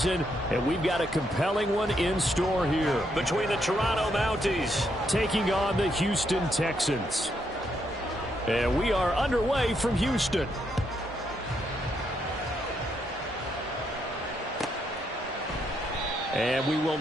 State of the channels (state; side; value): normal; both; correlation 0.77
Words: and we've got a compelling one in store here. Between the Toronto Mounties taking on the Houston Texans. And we are underway from Houston. And we will